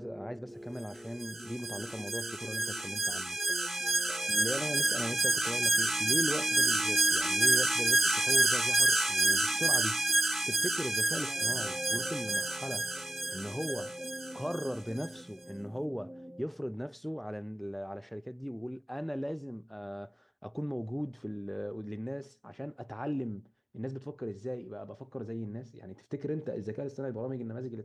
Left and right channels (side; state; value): both; normal; correlation 0.92